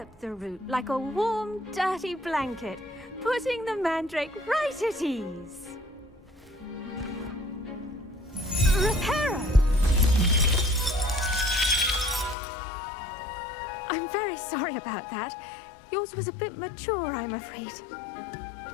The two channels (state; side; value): drops out; right; at 12.4 s